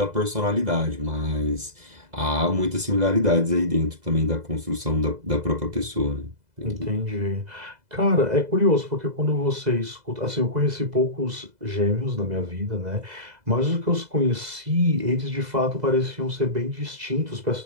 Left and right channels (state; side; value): late; left; 2.0 ms